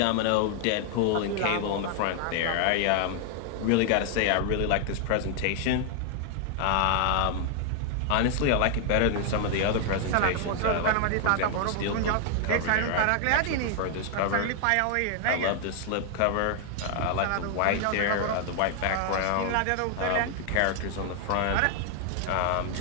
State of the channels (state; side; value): different; both; correlation 0.00